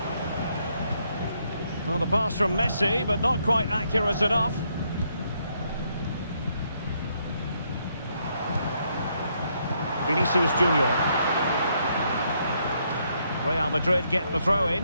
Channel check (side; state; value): both; inverted; correlation -0.74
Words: Well, the pass from Messi, but not quite accurate enough. Vinicius Junior. Real Madrid get the throw in.